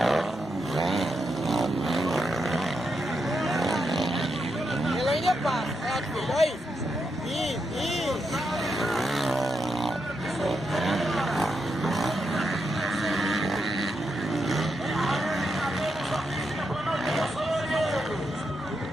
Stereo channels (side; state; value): both; normal; correlation 0.83